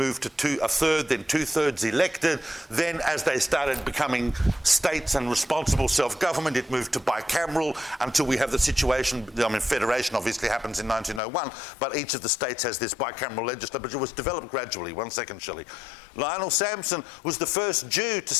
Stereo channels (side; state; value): right; drops out; at 11.2 s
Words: to a third, then 2/3 elected. Then as they started becoming states and responsible self-government, it moved to bicameral until we have the situation, federation obviously happens in 1901, but each of the states has this bicameral legislature, but it was developed gradually. 1 second, Shelley. Lionel Sampson was the first Jew to